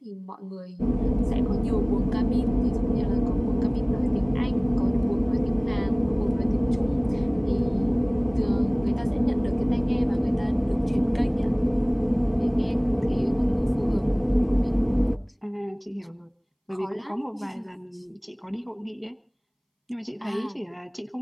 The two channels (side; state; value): both; identical; correlation 1.00